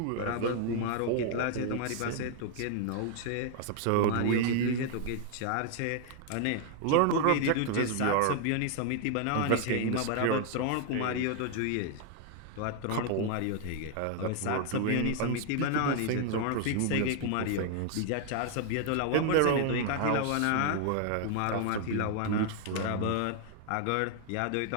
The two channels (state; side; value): different; both; correlation 0.00